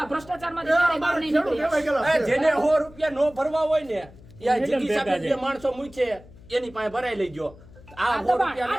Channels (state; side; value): noise; left; hum, 22 dB below the sound